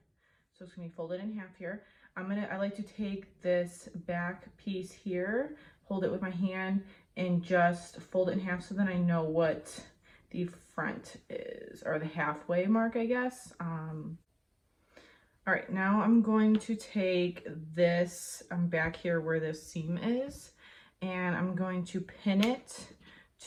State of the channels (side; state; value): both; identical; correlation 1.00